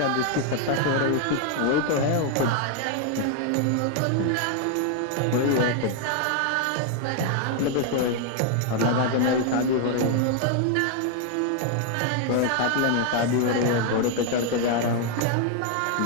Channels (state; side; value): different; both; correlation 0.00